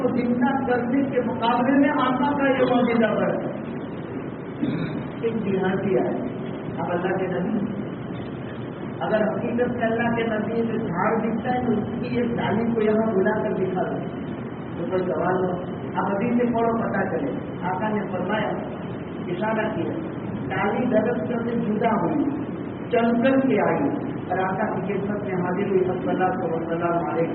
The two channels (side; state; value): both; identical; correlation 1.00